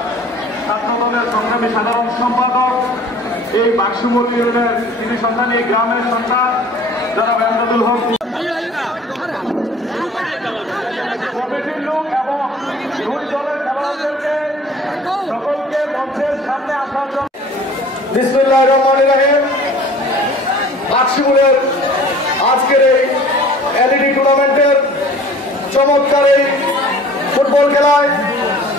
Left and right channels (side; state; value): both; normal; correlation 0.48